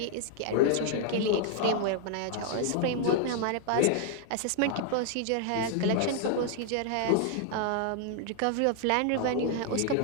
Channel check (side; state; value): both; different; correlation 0.00